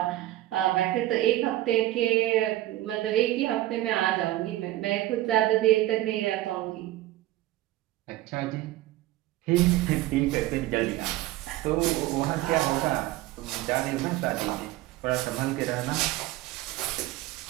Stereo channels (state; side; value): quieter; left; 15.8 dB